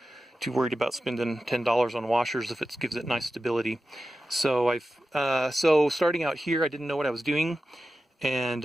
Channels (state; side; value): normal; both; correlation 0.93